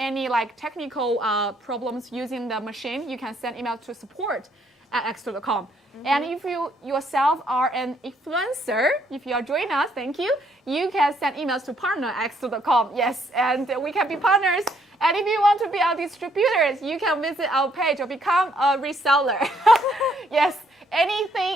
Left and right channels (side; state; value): both; normal; correlation 0.69